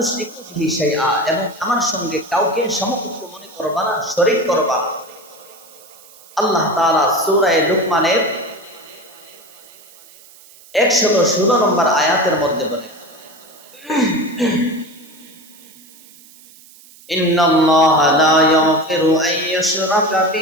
বিহি শাইআ, এবং আমার সঙ্গে কাউকে সমকক্ষ মনে করবা না, শরীক করবা না। আল্লাহ তাআলা সূরা লুকমানের 116 নম্বর আয়াতের মধ্যে বলেন, ইন্নাল্লাহা লা ইয়াগফিরু আন ইউশরাকা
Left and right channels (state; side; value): noise; right; hiss, 24 dB below the sound